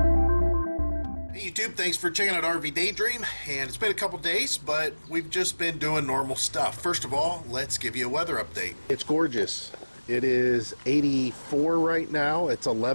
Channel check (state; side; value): inverted; both; correlation -1.00